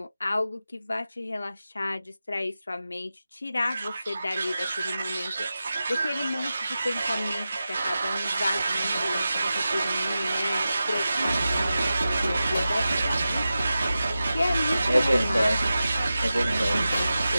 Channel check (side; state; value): both; inverted; correlation -0.93